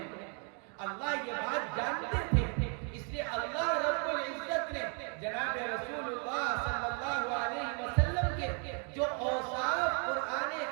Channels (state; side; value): quieter; left; 38.5 dB